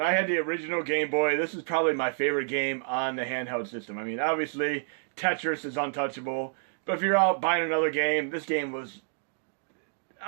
I had the original Game Boy, this is probably my favorite game on the handheld system. I mean, obviously, Tetris is untouchable, but if you're out buying another game, this game was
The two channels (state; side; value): silent; left; digital silence